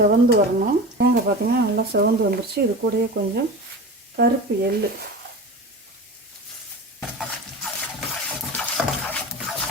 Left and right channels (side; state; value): both; normal; correlation 0.31